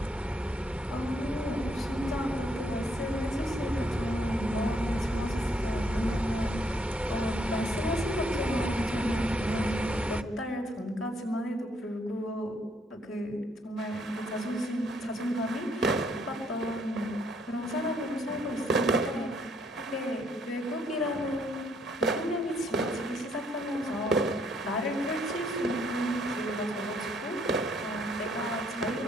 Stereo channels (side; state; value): both; normal; correlation 0.69